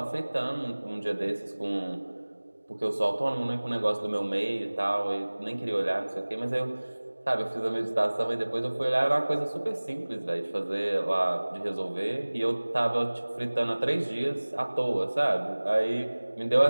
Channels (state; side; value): inverted; both; correlation -1.00